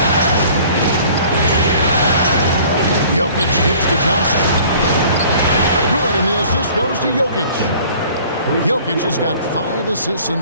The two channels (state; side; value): inverted; both; correlation -0.51